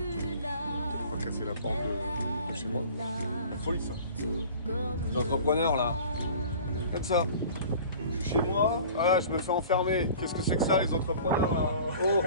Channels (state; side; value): inverted; both; correlation -0.44